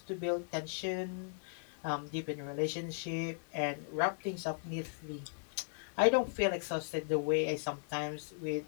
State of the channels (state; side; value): silent; right; 53 dB below the other